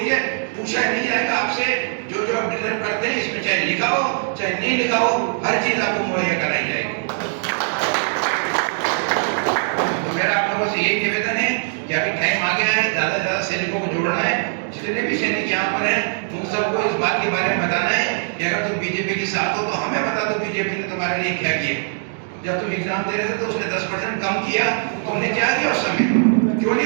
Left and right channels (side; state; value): left; silent; digital silence